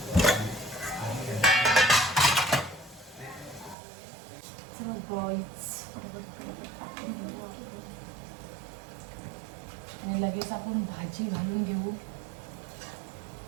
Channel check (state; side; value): drops out; left; at 3.8 s